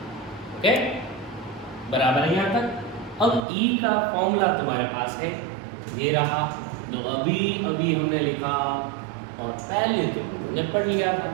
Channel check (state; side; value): drops out; left; at 3.4 s